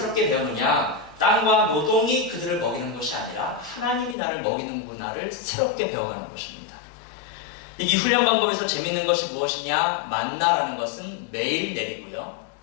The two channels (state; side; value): drops out; right; at 4.2 s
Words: 배우느냐? 땅과 노동이 그들을 먹이는 것이 아니라 하나님이 나를 먹이는구나를 새롭게 배워가는 것입니다. 이 훈련 방법에서 재밌는 것이 무엇이냐? 만나라는 것은 매일 내리고요.